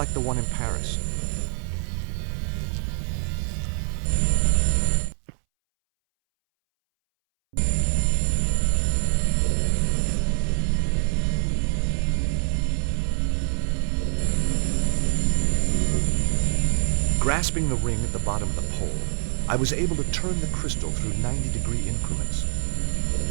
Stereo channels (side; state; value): left; silent; 62 dB below the other